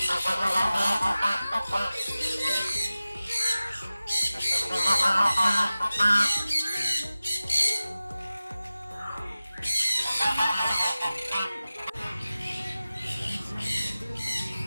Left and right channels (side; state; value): both; inverted; correlation -0.96